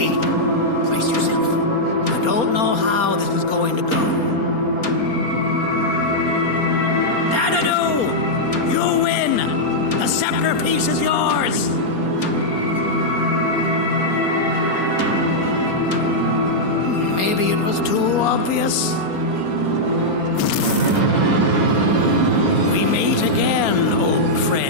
Brace yourself. I don't know how this is going to go. Dadadoo! You win! The scepter piece is yours! Maybe it was too obvious. We meet again, old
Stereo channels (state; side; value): late; right; 4.3 ms